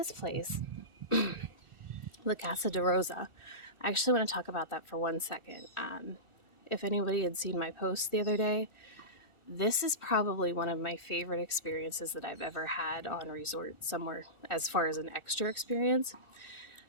place, La Casa de Rosa, I actually want to talk about that for 1 second. If anybody had seen my post the other day, this is probably one of my favorite experiences that I've ever had on a resort somewhere as far as an extra experience.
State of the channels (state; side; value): late; left; 1.4 ms